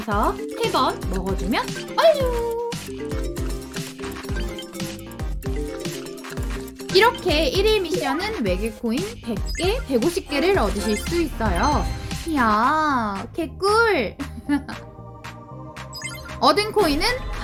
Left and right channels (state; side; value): identical; both; correlation 1.00